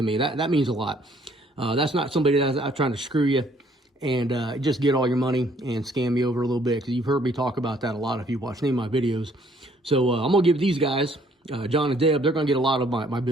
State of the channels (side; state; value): both; normal; correlation 0.63